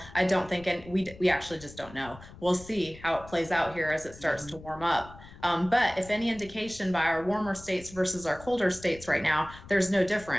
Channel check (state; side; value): noise; left; rumble, 18 dB below the sound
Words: I don't think, and we actually just don't know. We'll see how it plays out here as it starts to warm up. But if any indication by our warmer states versus our colder states right now, there's no